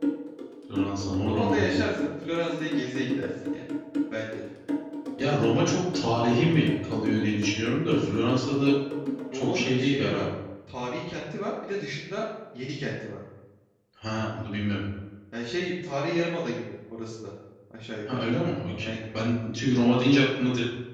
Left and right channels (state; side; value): identical; both; correlation 1.00